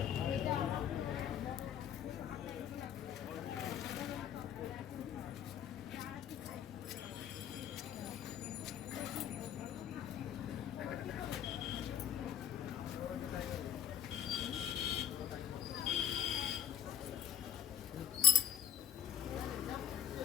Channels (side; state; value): right; quieter; 9.5 dB